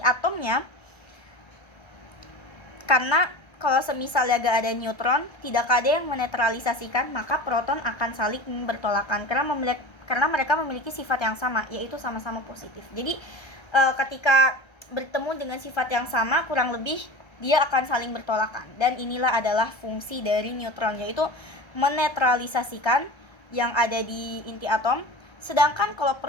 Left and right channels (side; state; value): right; late; 1.3 ms